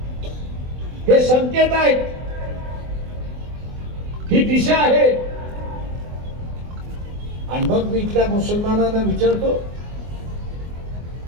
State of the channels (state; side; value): late; left; 24 ms